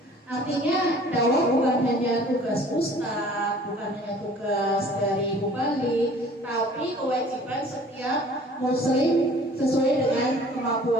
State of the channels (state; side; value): normal; both; correlation 0.50